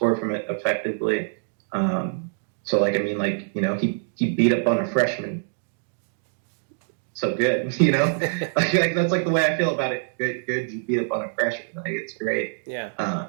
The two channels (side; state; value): left; silent; digital silence